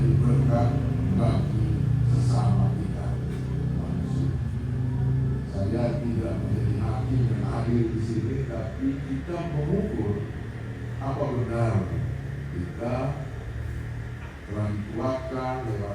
berkat bagi sesama kita manusia. Saya tidak menjadi hakim yang hadir di sini, tapi kita mengukur apa benar kita telah dikuatkan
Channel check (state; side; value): identical; both; correlation 1.00